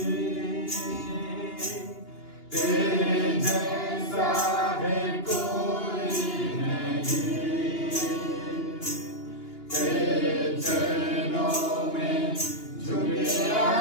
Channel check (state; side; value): late; right; 2.8 ms